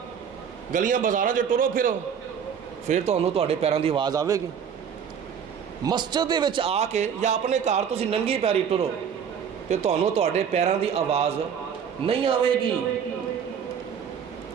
گلیاں بازاراں چ ٹرو پھرو، پھر تانوں تہاڈے پیراں دی آواز آوے گی۔ مسجد دے وچ آ کے یا اپنے گھر تسی ننگی پیری ٹرو تے تانوں تہاڈے پیراں دی آواز نہیں آوے گی۔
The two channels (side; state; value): left; quieter; 7.6 dB